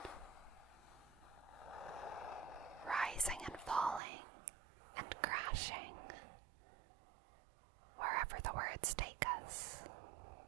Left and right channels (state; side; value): drops out; left; at 4.0 s